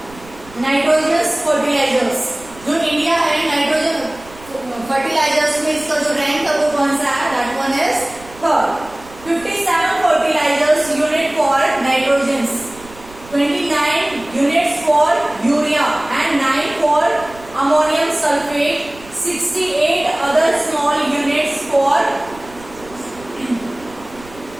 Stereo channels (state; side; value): noise; right; rumble, 21 dB below the sound